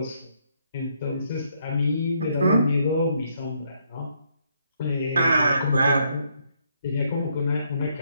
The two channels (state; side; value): inverted; both; correlation -0.72